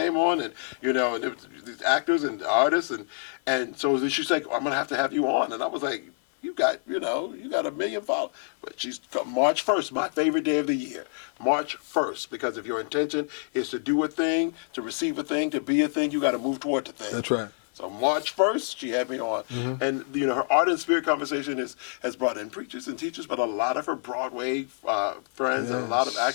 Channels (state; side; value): silent; right; 60 dB below the other